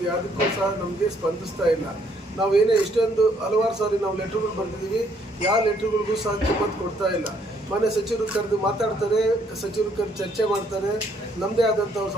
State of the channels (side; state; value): both; normal; correlation 0.67